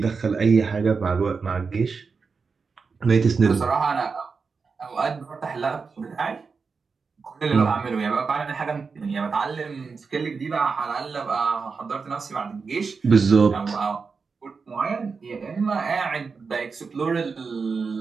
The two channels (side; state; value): left; quieter; 5.0 dB